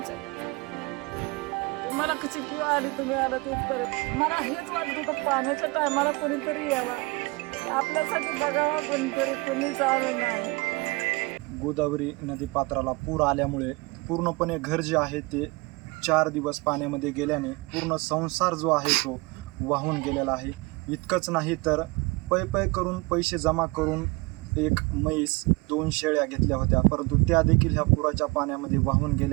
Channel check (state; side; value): quieter; left; 25.6 dB